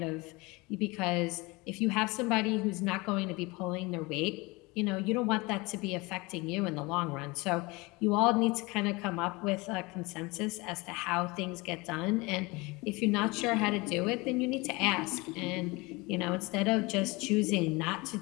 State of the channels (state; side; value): quieter; right; 24.6 dB